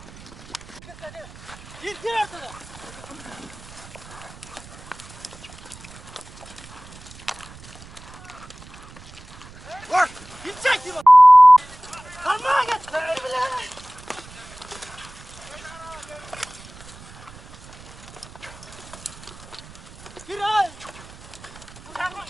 Gir ortada. Vur. Gidecek gibi. Kalmaya git. Gir ay.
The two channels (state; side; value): noise; right; rumble, 18 dB below the sound